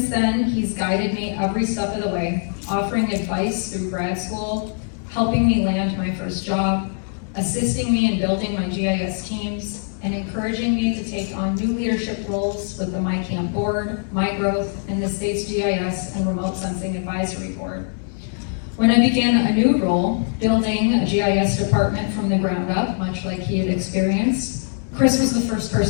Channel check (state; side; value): silent; right; 64 dB below the other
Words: then, he's guided me every step of the way, offering advice through grad school, helping me land my first job, assisting me in building my GIS teams, and encouraging me to take on new leadership roles with the MICAMP board, MyGrowth, and the state's GIS and Remote Sensing Advisory Board. When I began a new role, building a GIS department from the ground up, much like he had experienced, Chris was the first